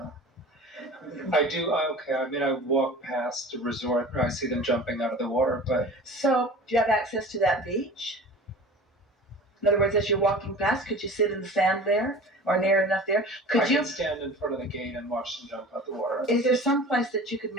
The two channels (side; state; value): both; normal; correlation 0.39